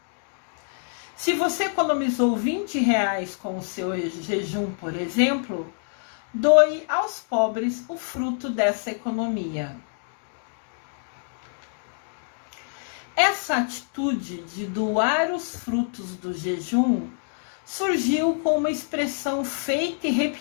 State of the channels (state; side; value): silent; right; 61 dB below the other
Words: Se você economizou R$20 com o seu jejum, por exemplo, doe aos pobres o fruto dessa economia. Essa atitude de doar os frutos do jejum surgiu com uma expressão feita e